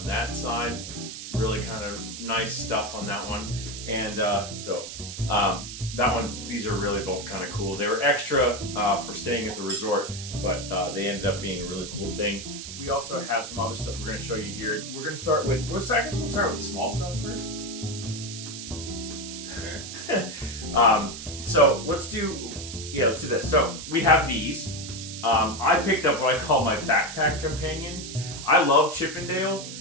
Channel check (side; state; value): right; noise; hiss, 9 dB below the sound